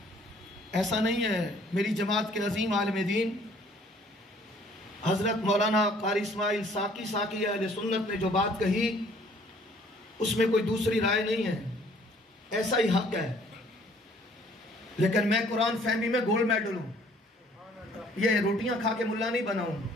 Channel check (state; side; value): normal; both; correlation 0.58